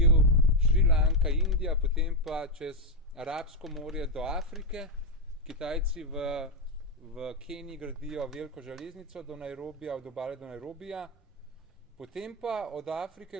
Šrilanka, Indija, potem pa čez Arabsko morje do Afrike. Kitajci v Keniji gradijo veliko železnico do Nairobija, od obale do Nairobija, potem pa od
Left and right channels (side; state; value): both; normal; correlation 0.05